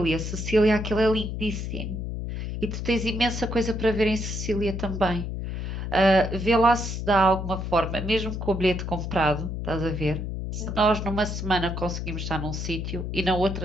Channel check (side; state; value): left; noise; hum, 4 dB below the sound